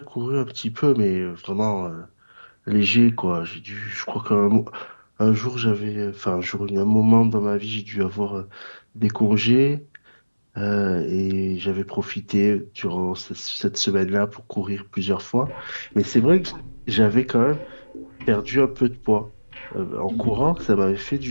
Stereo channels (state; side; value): inverted; both; correlation -1.00